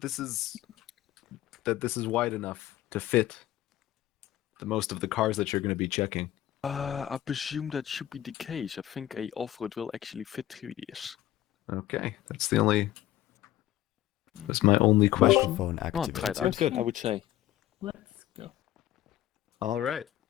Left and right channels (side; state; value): right; quieter; 13.9 dB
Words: this is wide enough to fit the most of the cars that you're going to be checking? I presume that should be the case. I think a off-road will actually fit through this. Okay, that's my only question. Microphone Oh, try it activated. out, good. I would say. Let's go. All right.